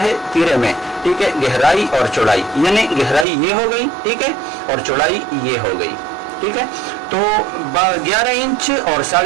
तीरे में, ठीक है, गहराई और चौड़ाई, यानी गहराई ये हो गई, ठीक है, और चौड़ाई ये हो गई, ठीक है। तो 11 इंच और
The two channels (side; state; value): left; drops out; at 3.2 s